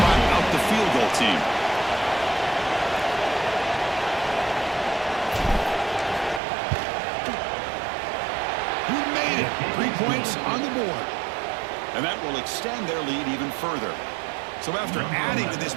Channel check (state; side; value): drops out; left; at 6.4 s